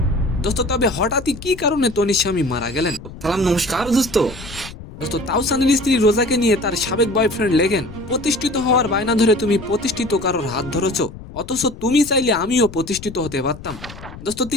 দোস্ত তবে হঠাৎই কি কারণে তনির স্বামী মারা গেলেন? সালাম নমস্কার দোস্ত। দোস্ত তাওসানের স্ত্রী রোজাকে নিয়ে তার সাবেক বয়ফ্রেন্ড লেখেন, প্রতিষ্ঠিত হওয়ার বায়না ধরে তুমি প্রতিষ্ঠিত কারোর হাত ধরেছ, অথচ তুমি চাইলে আমিও প্রতিষ্ঠিত হতে পারতাম। দোস্ত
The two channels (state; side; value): noise; left; rumble, 15 dB below the sound